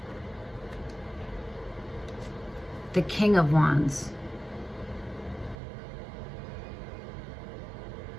the King of Wands.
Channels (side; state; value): left; drops out; at 5.6 s